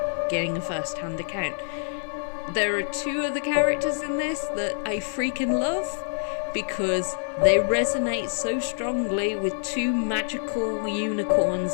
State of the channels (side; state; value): right; silent; 61 dB below the other